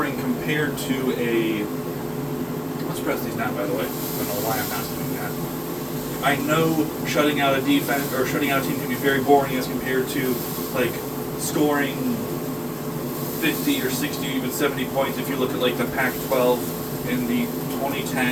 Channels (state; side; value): identical; both; correlation 1.00